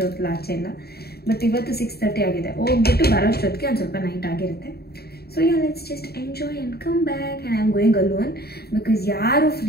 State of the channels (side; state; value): right; late; 0.46 ms